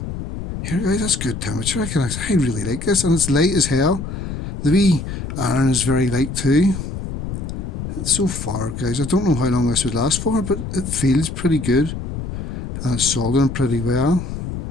here, guys, that's good temperature. I really like this, and it's light as hell. The wee iron is very light too. It's so far, guys, I don't know how long this would last for, but it feels pretty good, and it's soldering pretty well.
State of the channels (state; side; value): noise; left; rumble, 6 dB below the sound